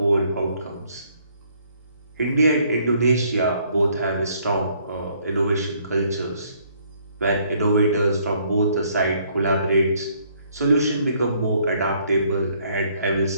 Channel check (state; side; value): inverted; both; correlation -0.65